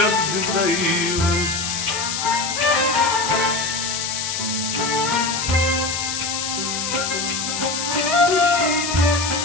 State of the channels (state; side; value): noise; left; hiss, 3 dB below the sound